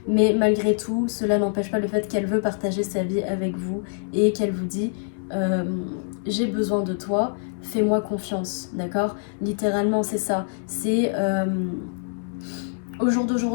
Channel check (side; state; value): right; silent; 62 dB below the other